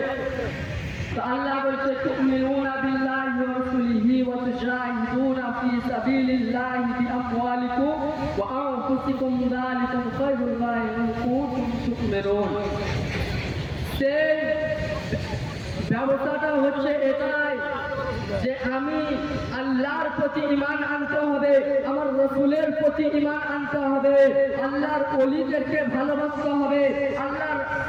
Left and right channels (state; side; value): identical; both; correlation 1.00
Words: আল্লাহ বলছে, তুমিনুনা বিল্লাহি ওয়া রাসূলিহি ওয়া তুজাহিদুনা ফি সাবিলিল্লাহি বিআমওয়ালিকুম ওয়া আনফুসিকুম যালিকুম খায়রুল লাকুম ইন কুনতুম তু'মিনুন। সেই ব্যবস্থাটা হচ্ছে এটাই যে আমি আল্লাহর প্রতি ঈমান আনতে হবে, আমার রাসূলের প্রতি ঈমান আনতে হবে, আল্লাহর ওলিদেরকে ভালোবাসতে হবে, আল্লাহর